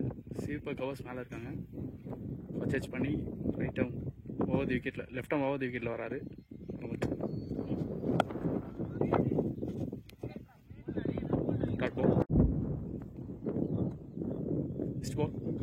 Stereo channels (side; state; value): both; identical; correlation 1.00